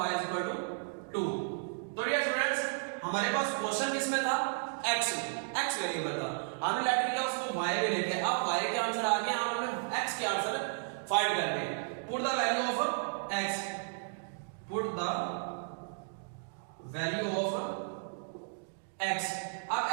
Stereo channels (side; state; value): left; silent; digital silence